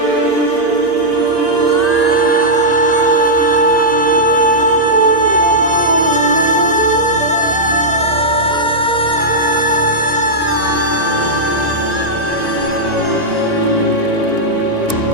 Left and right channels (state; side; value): late; left; 1.9 ms